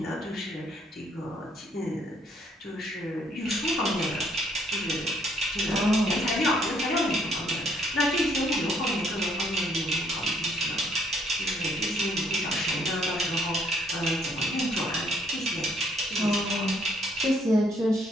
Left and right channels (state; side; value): normal; both; correlation 0.67